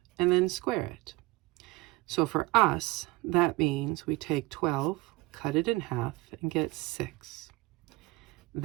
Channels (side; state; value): left; quieter; 21.4 dB